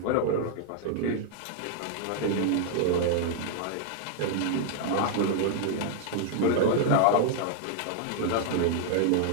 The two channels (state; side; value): different; both; correlation -0.01